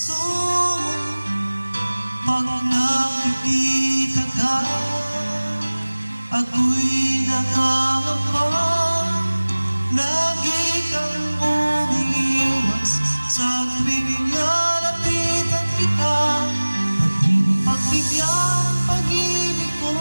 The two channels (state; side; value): inverted; both; correlation -1.00